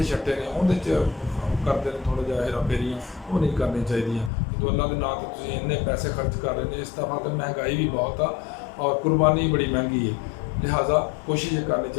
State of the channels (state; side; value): drops out; right; at 4.3 s